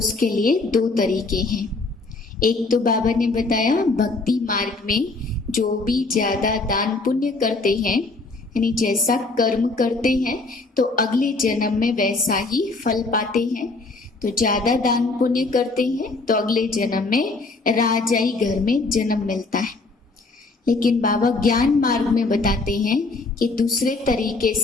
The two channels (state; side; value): quieter; right; 3.5 dB